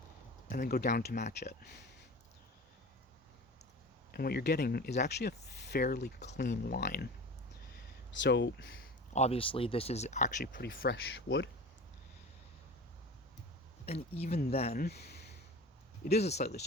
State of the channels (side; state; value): both; normal; correlation 0.34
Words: and then go down to match it. And what you're getting is actually a fairly clean line. So obviously this is actually pretty fresh wood. And even then, it is a slightly